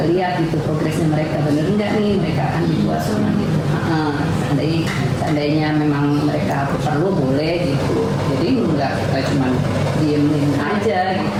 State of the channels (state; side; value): identical; both; correlation 1.00